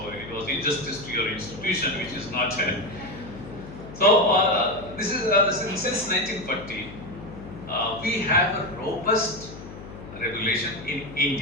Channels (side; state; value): left; noise; hum, 14 dB below the sound